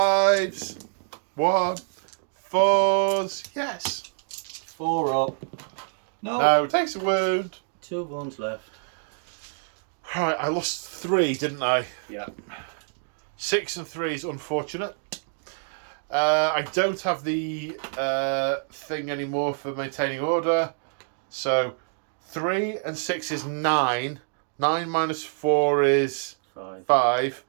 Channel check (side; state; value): left; silent; digital silence